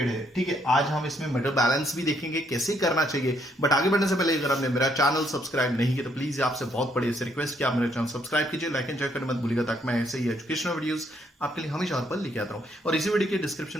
है। ठीक है, आज हम इसमें मेटल बैलेंस भी देखेंगे कैसे करना चाहिए। बट आगे बढ़ने से पहले अगर आपने मेरा चैनल सब्सक्राइब नहीं किया तो प्लीज आपसे बहुत बड़ी से रिक्वेस्ट कि आप मेरा चैनल सब्सक्राइब कीजिए, लाइक एंड शेयर करना मत भूलिएगा ताकि मैं ऐसे ही एजुकेशनल वीडियोस आपके लिए हमेशा और पर लेके आता हूं। और इसी वीडियो के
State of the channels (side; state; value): both; normal; correlation 0.71